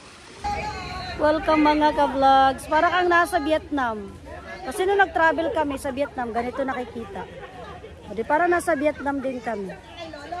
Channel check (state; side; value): identical; both; correlation 1.00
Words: Welcome mga ka-vlogs. Para kang nasa Vietnam. Kasi nung nag-travel kami sa Vietnam, ganito nakikita. O di para nasa Vietnam din kami.